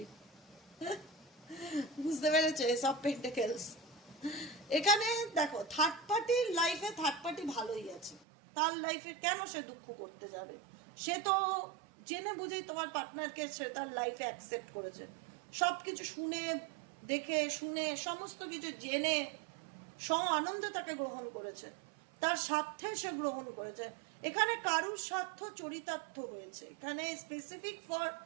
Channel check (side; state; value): left; drops out; at 8.2 s